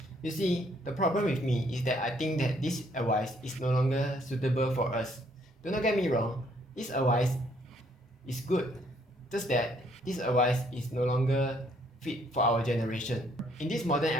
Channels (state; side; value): normal; both; correlation 0.67